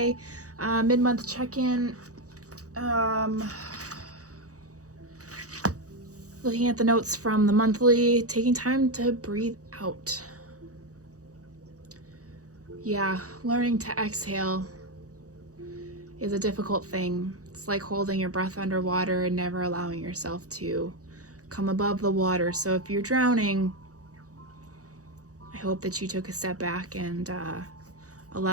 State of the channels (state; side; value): late; left; 0.66 ms